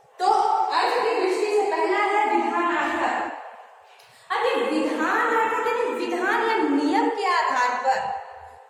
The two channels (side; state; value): both; identical; correlation 1.00